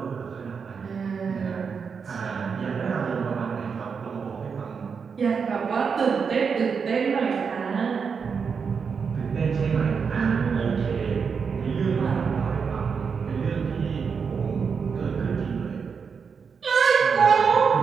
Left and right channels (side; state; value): left; quieter; 6.0 dB